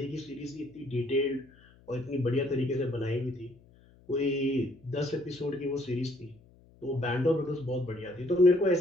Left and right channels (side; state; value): left; noise; hum, 27 dB below the sound